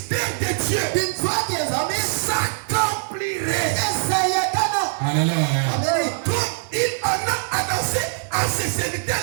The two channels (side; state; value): left; silent; 64 dB below the other